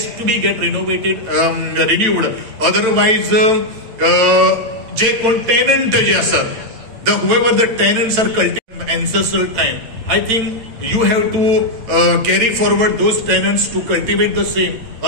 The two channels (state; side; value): late; left; 8.9 ms